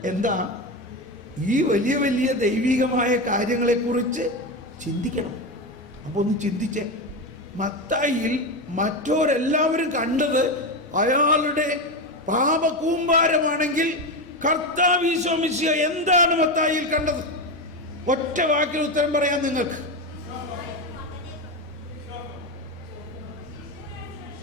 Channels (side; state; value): both; normal; correlation 0.16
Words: എന്താ? ഈ വലിയ വലിയ ദൈവികമായ കാര്യങ്ങളെക്കുറിച്ച് ചിന്തിക്കണം. അപ്പോൾ ഒന്ന് ചിന്തിച്ചേ, മത്തായിയിൽ മറ്റോരെല്ലാവരും കണ്ടത് അയാളുടെ പാപകൂമ്പാരമാണെങ്കിൽ കർത്താവ് ഈശോ മിശിഹ എന്താണ് മത്തായിയിൽ കണ്ടത്? ഒറ്റ വാക്കിൽ ഉത്തരം പറയാൻ നിങ്ങൾക്ക്.